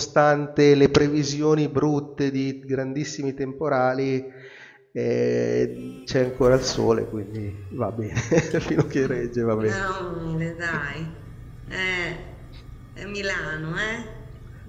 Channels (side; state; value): both; identical; correlation 1.00